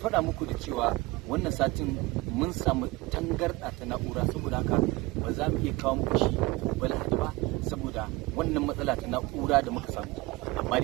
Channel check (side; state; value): left; quieter; 22.2 dB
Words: muku da cewa wannan satin mun samu tangarɗa ta na'ura, saboda haka ba za mu iya kawo muku shi gobe Lahadi ba saboda wannan matsala ta na'ura da muka samu. Amma